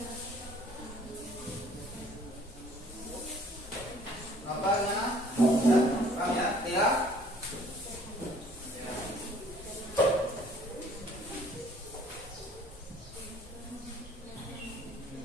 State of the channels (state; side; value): normal; both; correlation 0.56